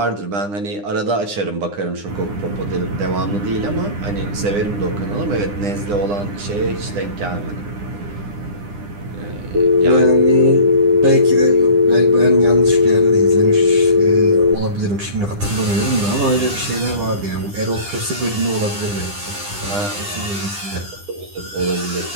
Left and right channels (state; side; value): late; left; 9.9 ms